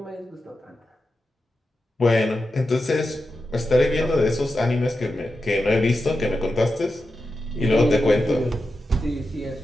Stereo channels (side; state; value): both; normal; correlation 0.90